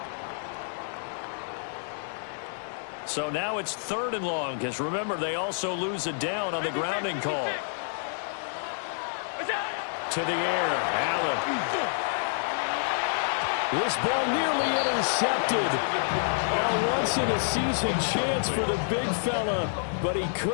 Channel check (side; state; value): right; silent; 59 dB below the other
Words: So now it's 3rd and long, because remember, they also lose a down on the grounding call. To the air, Allen. This ball nearly intercepted. A once-in-a-season chance for the big fella, but he